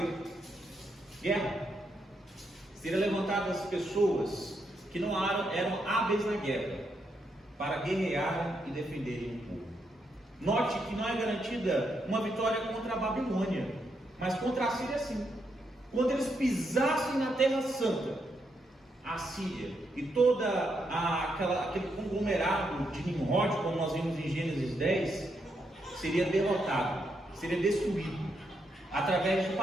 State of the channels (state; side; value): normal; both; correlation 0.80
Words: guerra. Seriam levantadas pessoas que não eram hábeis na guerra, para guerrear e defenderem o povo. Note que não é garantida uma vitória contra a Babilônia, mas contra a Síria sim. quando eles pisassem na Terra Santa, a Síria e todo aquele conglomerado de Nimrod, como nós vimos em Gênesis 10, seria derrotado, seria destruído, através de